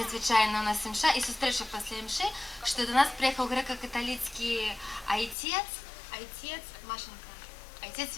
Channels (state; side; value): drops out; right; at 5.4 s